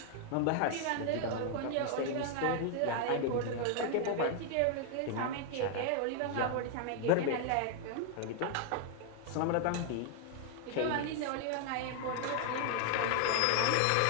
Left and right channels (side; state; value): both; different; correlation 0.00